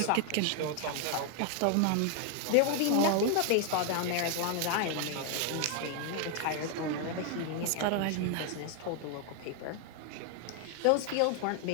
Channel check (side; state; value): both; different; correlation 0.00